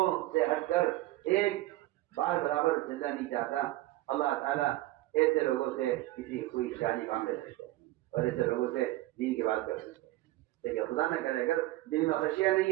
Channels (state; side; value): quieter; left; 17.4 dB